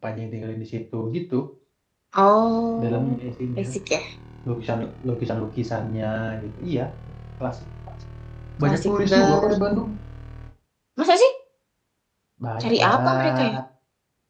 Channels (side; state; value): both; identical; correlation 1.00